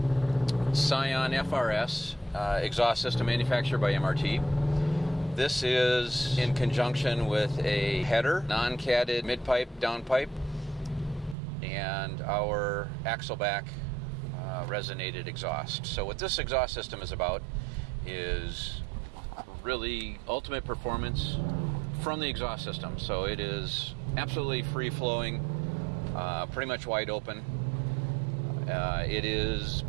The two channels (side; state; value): left; drops out; at 11.4 s